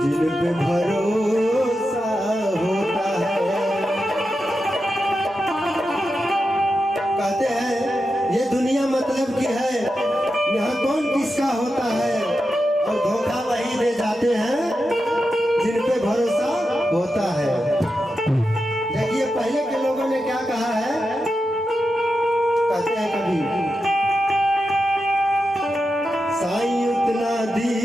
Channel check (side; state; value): both; normal; correlation 0.89